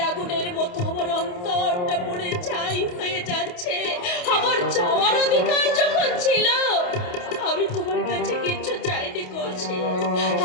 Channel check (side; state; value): right; late; 28 ms